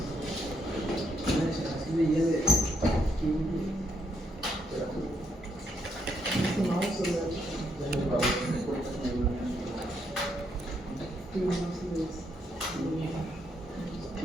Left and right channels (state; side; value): normal; both; correlation 0.76